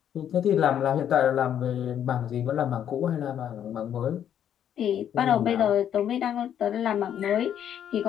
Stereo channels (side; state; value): right; quieter; 9.7 dB